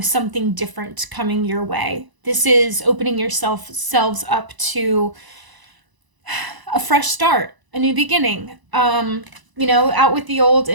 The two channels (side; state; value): left; late; 1.0 ms